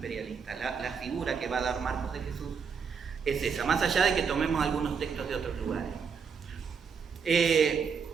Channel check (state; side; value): quieter; left; 6.1 dB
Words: La figura que va a dar Marcos de Jesús es esa, más allá de que tomemos algunos textos de otros lugares.